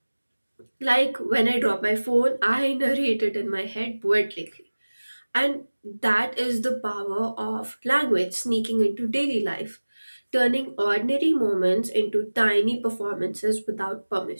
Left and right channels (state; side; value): inverted; both; correlation -1.00